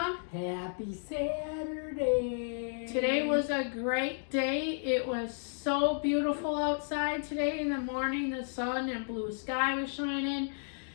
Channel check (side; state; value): right; silent; digital silence